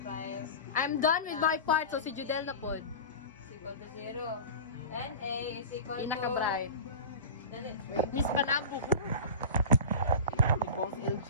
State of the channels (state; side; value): inverted; both; correlation -0.32